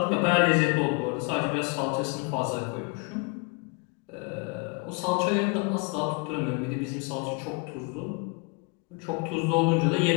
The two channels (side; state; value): right; quieter; 30.7 dB